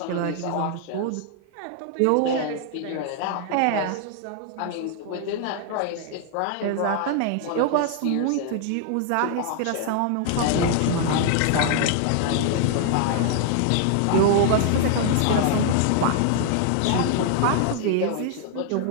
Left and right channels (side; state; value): both; different; correlation 0.00